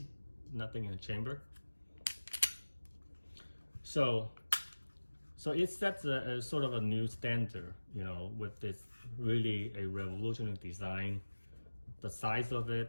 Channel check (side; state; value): both; inverted; correlation -1.00